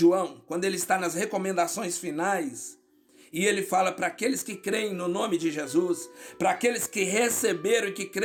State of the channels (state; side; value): identical; both; correlation 1.00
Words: quando ele está nas recomendações finais, e ele fala para aqueles que creem no nome de Jesus, para aqueles que receberam e que